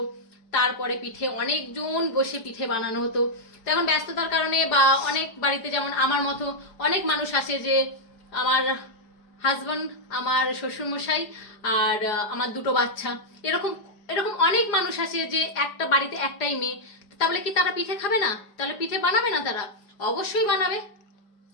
তারপরে পিঠে অনেকজন বসে পিঠে বানানো হতো। তো এখন ব্যস্ততার কারণে বা অনেক বাড়িতে যেমন আমার মতো অনেক মানুষ আসে, যে আমার হাজব্যান্ড, আমার শ্বশুরমশাই আর আমার দুটো বাচ্চা, এরকম এরকম অনেক মানুষ আছে যে একটা বাড়িতে একটাই মেয়ে। তাহলে কি তারা পিঠে খাবে না? তাহলে পিঠে বানাবে না? তারা অবশ্যই বানাবে।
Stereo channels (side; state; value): right; late; 5.0 ms